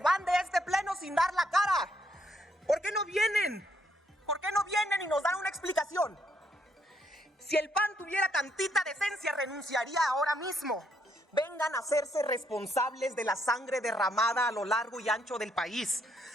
de este pleno sin dar la cara. ¿Por qué no vienen? ¿Por qué no vienen y nos dan una explicación? Si el PAN tuviera tantita decencia, renunciaría ahora mismo. Vengan a hacerse responsables de la sangre derramada a lo largo y ancho del país,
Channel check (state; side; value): normal; both; correlation 0.73